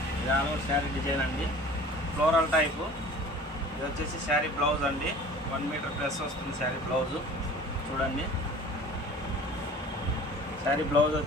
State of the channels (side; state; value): both; normal; correlation 0.44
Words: ఇది ఆల్ ఓవర్ శారీ డిజైన్ అండి, ఫ్లోరల్ టైపు. ఇది వచ్చేసి శారీ బ్లౌజ్ అండి, 1 మీటర్ ప్లస్ వస్తుంది శారీ బ్లౌజు. చూడండి, శారీ బ్లౌజ్